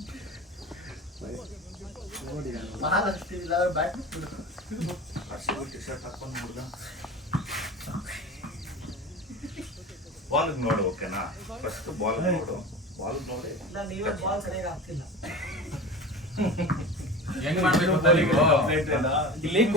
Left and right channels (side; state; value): both; normal; correlation 0.32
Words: 4 ಟಿ-ಶರ್ಟ್ ಹಾಕೊಂಡು ನೋಡ್ದ ಬಾಲ್ ನೋಡು ಓಕೆನಾ ಫಸ್ಟ್ ಬಾಲ್ ನೋಡು ಬಾಲ್ ನೋಡಿ ಹೆಂಗ್ ಮಾಡ್ಬೇಕು ಗೊತ್ತಾ ನೀವು ಇಲ್ಲಿ